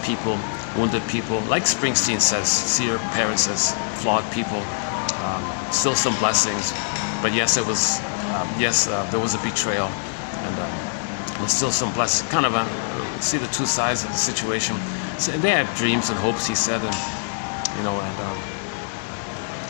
wounded people. Like Springsteen says, see your parents as flawed people. Still some blessings, but yes, it was there was a betrayal, and still some blessings. Kind of see the two sides of the situation. So they had dreams and hopes, he said, and you know,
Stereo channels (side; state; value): right; silent; 63 dB below the other